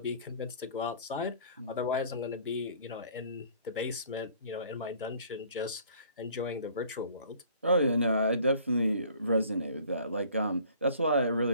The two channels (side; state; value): both; inverted; correlation -0.54